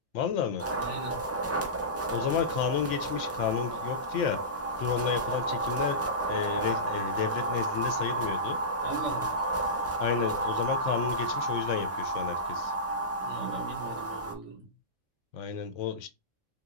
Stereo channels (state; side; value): normal; both; correlation -0.20